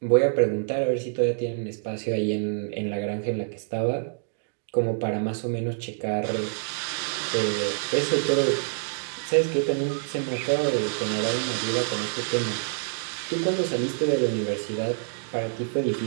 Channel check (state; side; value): silent; left; digital silence